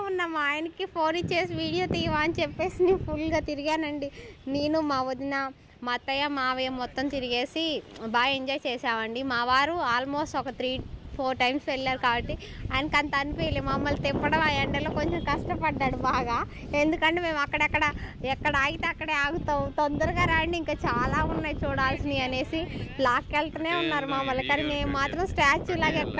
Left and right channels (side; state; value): both; identical; correlation 1.00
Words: ఉన్నా. మా ఆయనకి ఫోన్ ఇచ్చేసి వీడియో తీయవా అని చెప్పేసి నేను ఫుల్గా తిరిగానండి. నేను మా వదిన మా అత్తయ్య మావయ్య మొత్తం తిరిగేసి బాగా ఎంజాయ్ చేసామండి. మా వారు ఆల్మోస్ట్ ఒక 3-4 టైమ్స్ వెళ్ళారు కాబట్టి ఆయనకు అంత అనిపించలేదు. మమ్మల్ని తిప్పడం ఆ ఎండలో కొంచెం కష్టపడ్డాడు బాగా. ఎందుకంటే మేము ఎక్కడ ఆగితే అక్కడే ఆగుతాం, తొందరగా రండి ఇంకా చాలా ఉన్నాయి చూడాల్సినవి అనేసి లాక్కెళ్తూనే ఉన్నారు మమ్మల్ని. కానీ మేము మాత్రం స్టాచ్యూ లాగా